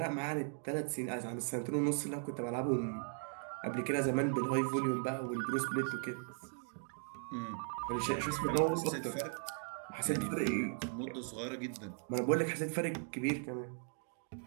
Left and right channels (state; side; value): silent; left; 52 dB below the other